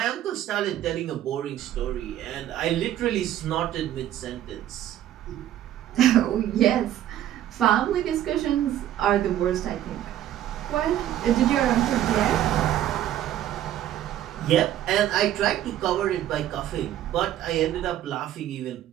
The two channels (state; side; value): quieter; left; 12.1 dB